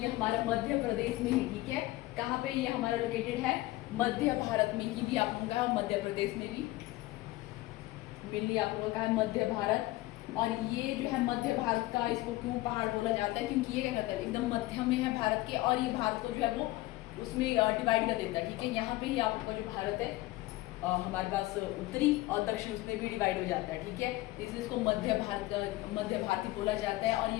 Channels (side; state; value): right; quieter; 18.6 dB